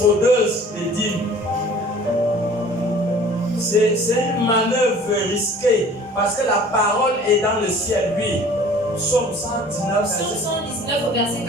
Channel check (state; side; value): normal; both; correlation 0.48